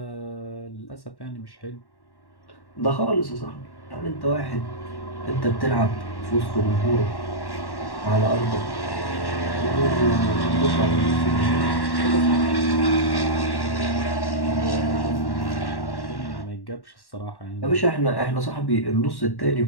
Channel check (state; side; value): late; right; 1.1 ms